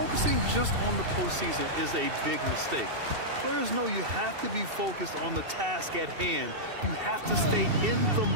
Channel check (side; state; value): left; late; 2.7 ms